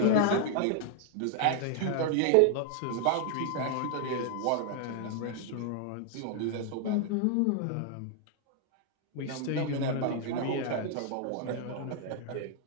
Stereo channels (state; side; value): different; both; correlation 0.00